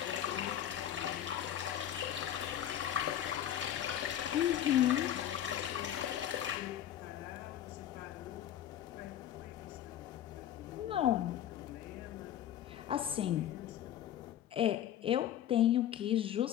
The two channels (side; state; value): right; quieter; 11.1 dB